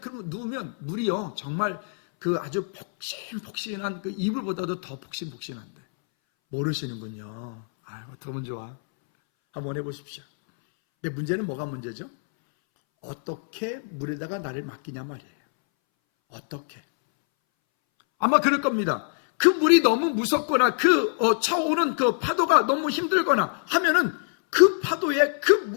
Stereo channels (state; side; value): silent; right; 62 dB below the other